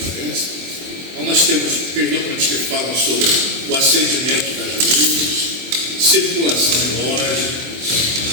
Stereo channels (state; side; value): late; left; 24 ms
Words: parece. Então, nós temos aqueles documentos que falam sobre o acendimento das luzes, circulação em loja,